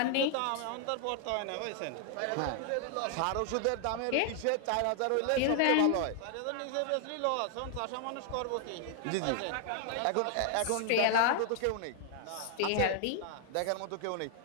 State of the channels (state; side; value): different; both; correlation 0.00